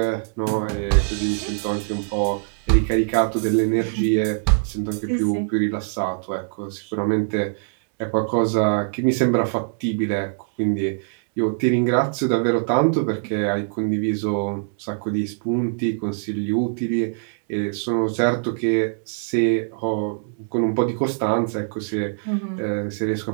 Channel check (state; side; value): silent; left; digital silence